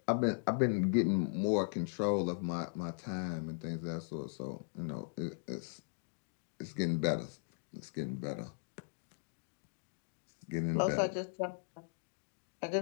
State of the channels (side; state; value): right; silent; digital silence